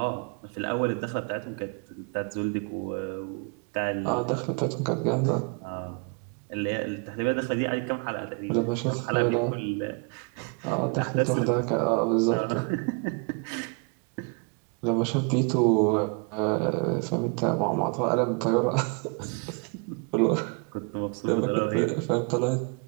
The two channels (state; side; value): quieter; left; 35.2 dB